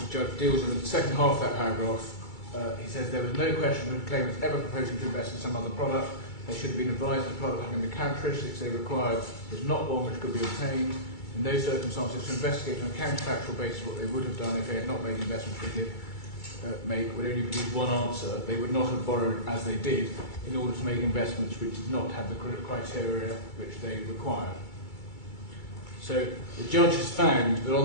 judge deals with the second half of that paragraph. He says there was no question that claimants ever proposing to invest in some other product. They should have been advised that the product having the characteristics they required was not one which could be obtained. In those circumstances, to investigate on a counterfactual basis what they would have done if they had not made the investment they did make would only produce one answer. They would not have borrowed as they did in order to make investments which did not have the criteria which they required. So the judge has found that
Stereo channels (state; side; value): late; right; 2.3 ms